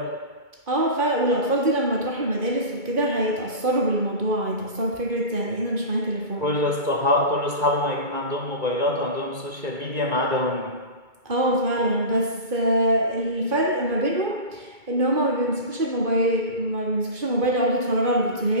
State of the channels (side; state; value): left; late; 2.2 ms